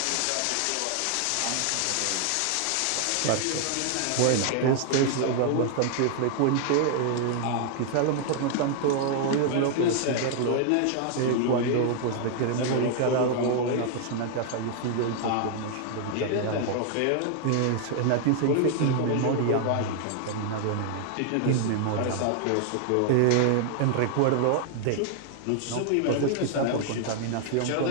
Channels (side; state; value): both; different; correlation 0.00